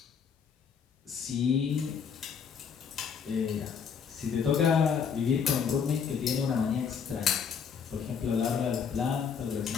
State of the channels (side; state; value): right; quieter; 6.7 dB